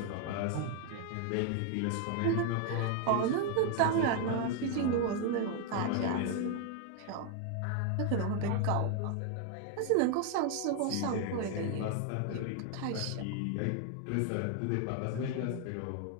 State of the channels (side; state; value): both; different; correlation 0.01